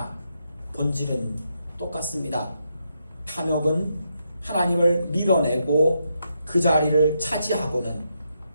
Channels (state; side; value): inverted; both; correlation -0.81